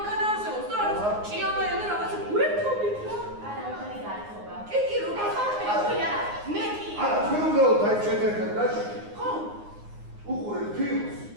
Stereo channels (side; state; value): left; late; 9.6 ms